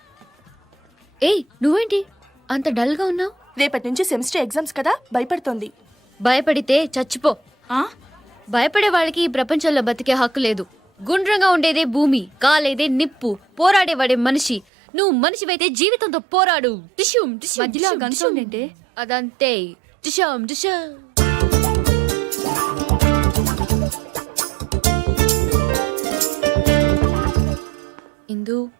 ఏయ్ నువ్వేంటి అంత డల్గా ఉన్నావు? రేపటి నుంచి సెమిస్టర్ ఎగ్జామ్స్ కదా, భయపడుతోంది. భయపడితే చచ్చిపో. భయపడే వాళ్ళకి ఈ ప్రపంచంలో బతికే హక్కు లేదు. గుండ్రంగా ఉండేదే భూమి, కాలేదే నిప్పు, పోరాడేవాడే మనిషి. నువ్వు మనిషివైతే జీవితంతో పోరాడు. టిష్యూమ్ టిష్యూమ్ మధ్యలో టిష్యూమ్, గన్ టిష్యూమ్. సౌండ్ ఏంటి? అదంతే. టిష్యూమ్ టిష్యూమ్. ఇందు,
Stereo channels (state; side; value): drops out; left; at 14.7 s